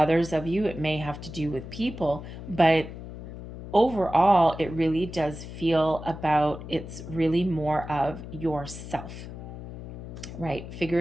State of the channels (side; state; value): left; noise; hum, 11 dB below the sound